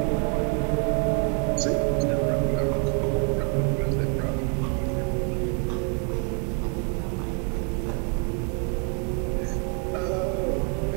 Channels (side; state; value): left; quieter; 38.1 dB